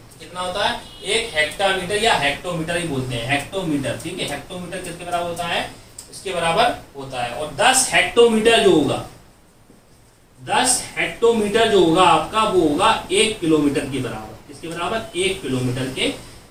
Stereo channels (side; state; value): both; identical; correlation 1.00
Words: कितना होता है? 1 हेक्टामीटर, या हेक्टोमीटर ही बोलते हैं, हेक्टोमीटर। ठीक है, हेक्टोमीटर किसके बराबर होता है? इसके बराबर होता है। और 10 हेक्टोमीटर जो होगा, 10 हेक्टोमीटर जो होगा आपका वो होगा 1 किलोमीटर के बराबर। किसके बराबर? 1 किलोमीटर के